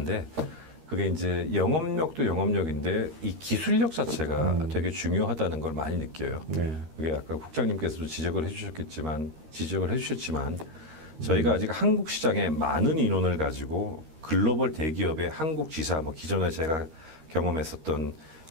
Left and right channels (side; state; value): left; late; 13 ms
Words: 그게 이제 영업력도 영업력인데 이 기술력 자체가 되게 중요하다는 걸 많이 느껴요. 네. 그게 아까 국장님께서도 지적을 해주셨지만 저희가 아직 한국 시장에 많은 인원을 가지고 글로벌 대기업의 한국 지사, 뭐 기존에 제가 경험했었던